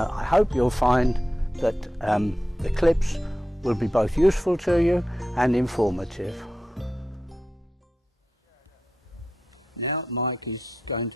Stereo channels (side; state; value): both; normal; correlation 0.90